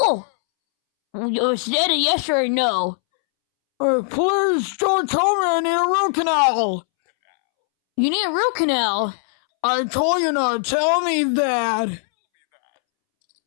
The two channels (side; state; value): right; silent; 66 dB below the other